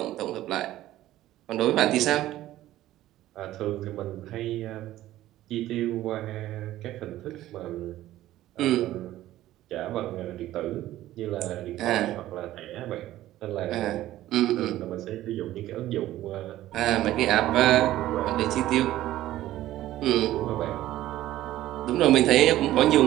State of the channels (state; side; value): quieter; left; 14.5 dB